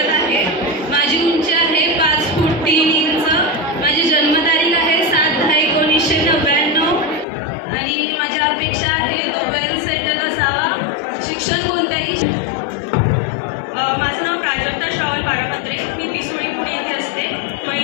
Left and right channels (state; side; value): drops out; right; at 7.2 s